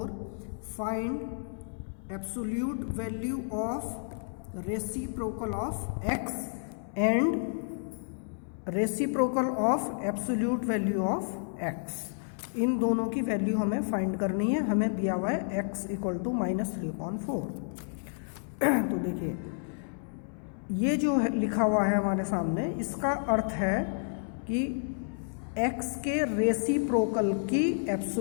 find absolute value of reciprocal of x and reciprocal of absolute value of x. इन दोनों की value हमें find करनी है. हमें दिया हुआ है x equal to minus 3/4. तो देखिए ये जो है लिखा हुआ है हमारे सामने, इसका अर्थ है कि x के रेसिप्रोकल की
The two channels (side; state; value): right; silent; 57 dB below the other